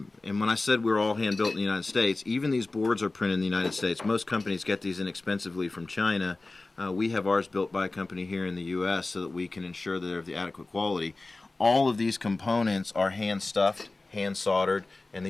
when I said we're all hand-built in the United States, even these boards are printed in the United States. Most companies get these inexpensively from China. We have ours built by a company here in the U.S. so that we can ensure that they're of the adequate quality. All of these components are hand-stuffed, hand-soldered, and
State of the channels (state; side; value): quieter; right; 3.3 dB